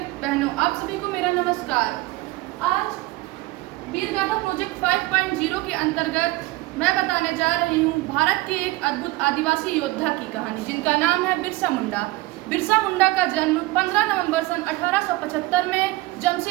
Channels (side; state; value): left; quieter; 20.2 dB